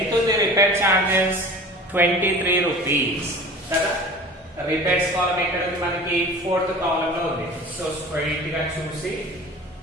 ఉంది, రిపేర్ చార్జెస్ 23 రూపీస్ కదా. రిపేర్స్ కాలమ్ ఎక్కడ ఉంది మనకి, 4th కాలమ్ లో ఉంది. సో స్ట్రైట్ గా చూసి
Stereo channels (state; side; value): normal; both; correlation 0.40